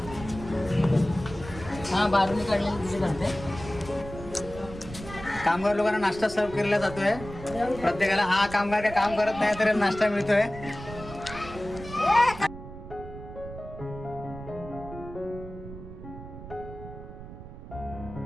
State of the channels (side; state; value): right; noise; rumble, 13 dB below the sound